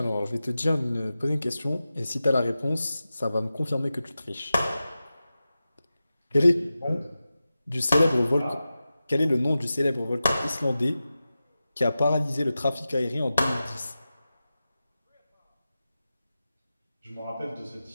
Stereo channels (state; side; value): inverted; both; correlation -0.94